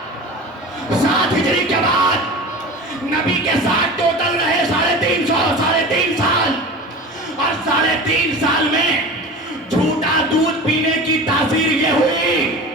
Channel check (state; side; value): normal; both; correlation 0.34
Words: 7 हिजरी के बाद। नबी के साथ टोटल रहे 3.5 साल, और 3.5 साल में झूठा दूध पीने की तासीर ये हुई